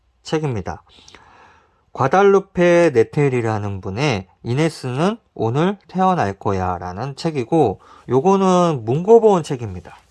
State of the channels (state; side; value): identical; both; correlation 1.00